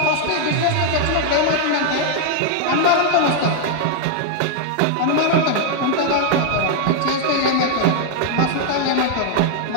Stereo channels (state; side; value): different; both; correlation 0.00